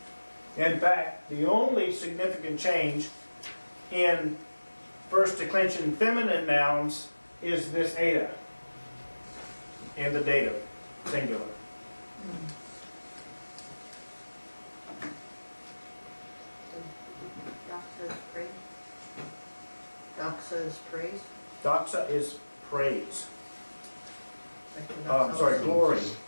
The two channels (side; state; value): both; inverted; correlation -1.00